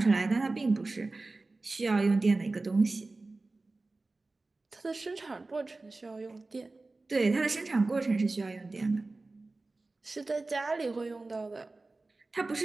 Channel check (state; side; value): quieter; left; 3.3 dB